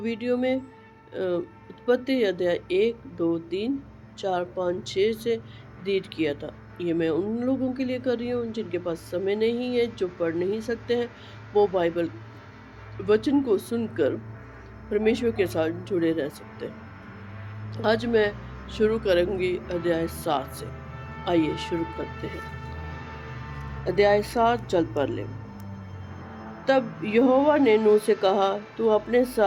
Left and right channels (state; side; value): identical; both; correlation 1.00